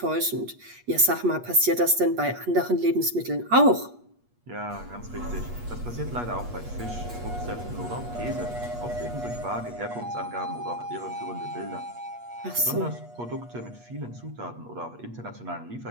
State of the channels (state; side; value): late; left; 8.4 ms